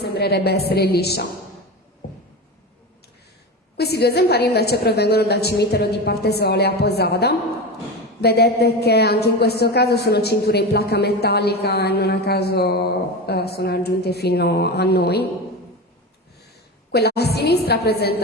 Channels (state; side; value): normal; both; correlation 0.23